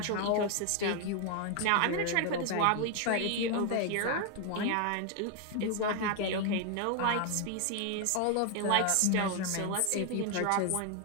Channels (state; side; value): different; both; correlation 0.01